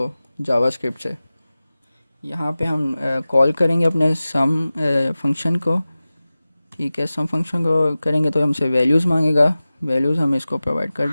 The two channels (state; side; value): inverted; both; correlation -0.97